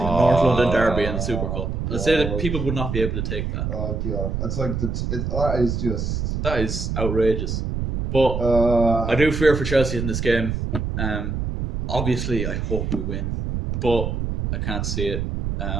a North London derby and the Super Cup. Let's say that people would not be able to take that. Oh god, it's like that is just outrageous. But I do fear for Chelsea in this game. Obviously, I hope we win, but I can't see it.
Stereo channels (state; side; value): noise; right; rumble, 2 dB below the sound